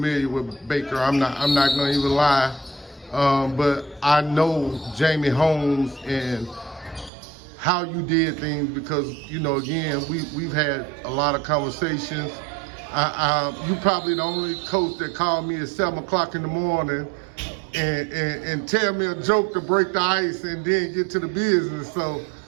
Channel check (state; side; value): drops out; left; at 7.1 s